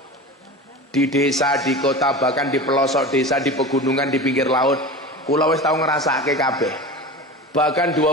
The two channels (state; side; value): normal; both; correlation 0.31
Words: di desa, di kota, bahkan di pelosok desa, di pegunungan, di pinggir laut. Kula wis tau ngrasake kabeh. Bahkan